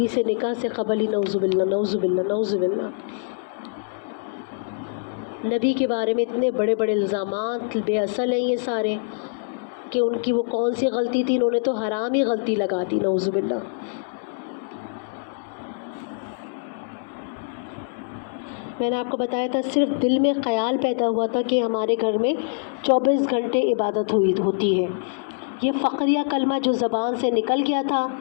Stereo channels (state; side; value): silent; right; 62 dB below the other